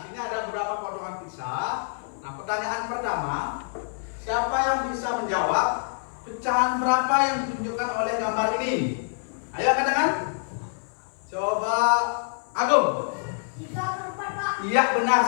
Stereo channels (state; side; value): silent; right; 56 dB below the other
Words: sini ada beberapa potongan pizza. Nah, pertanyaan pertama, siapa yang bisa menjawab pecahan berapa yang ditunjukkan oleh gambar ini? Ayo katakan. Coba Agung. 3/4, Pak. Iya, benar